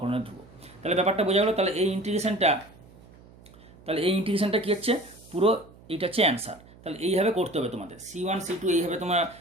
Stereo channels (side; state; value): right; noise; hum, 23 dB below the sound